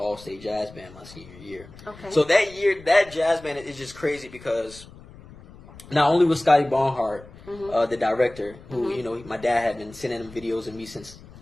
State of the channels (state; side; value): noise; left; rumble, 20 dB below the sound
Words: all-state jazz band my senior year. Okay. So that year, that jazz band is just crazy because not only was Scotty Bonhart the director, who my dad had been sending him videos of me since